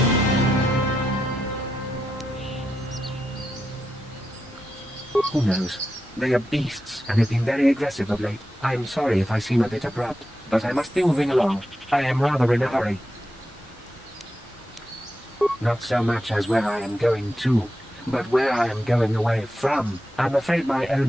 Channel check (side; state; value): both; normal; correlation 0.87